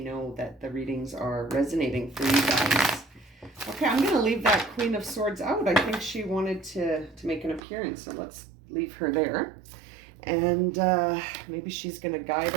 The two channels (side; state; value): left; drops out; at 7.6 s